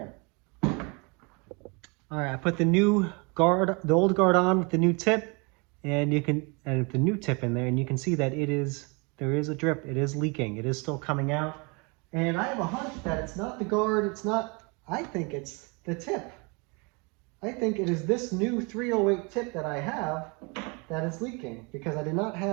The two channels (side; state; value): left; quieter; 30.6 dB